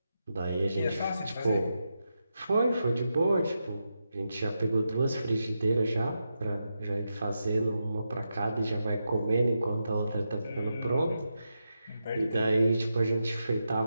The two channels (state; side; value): inverted; both; correlation -0.87